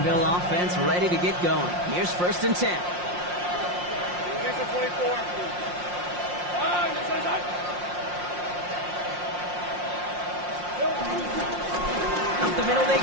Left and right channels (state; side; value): late; left; 5.6 ms